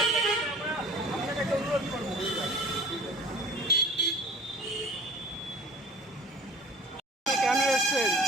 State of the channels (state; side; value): normal; both; correlation 0.45